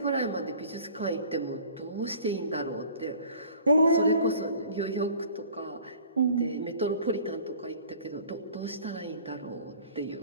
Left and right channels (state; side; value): inverted; both; correlation -0.49